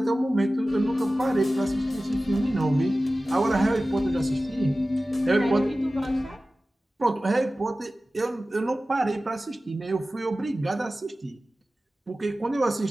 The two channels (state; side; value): normal; both; correlation 0.96